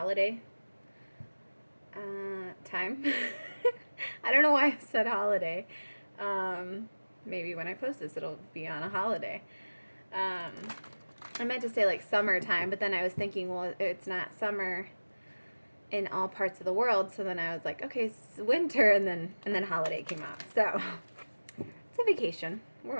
time. I don't know why I said holiday. Maybe when I post this, it'll be on a holiday. I meant to say like summertime, but then I was thinking, well, it's not summer in all parts of the world. So then I was like, okay, it's winter, and then holiday came out. So it's a vacation. We're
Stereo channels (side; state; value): both; inverted; correlation -1.00